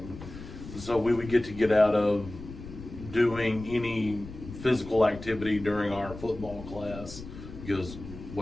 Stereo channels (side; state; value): left; noise; rumble, 13 dB below the sound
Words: So we would get out of doing any physical activity during our football class because,